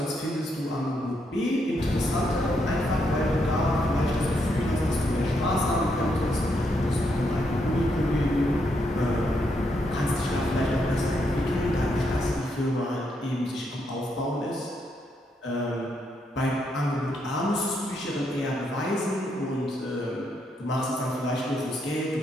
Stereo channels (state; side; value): normal; both; correlation 0.78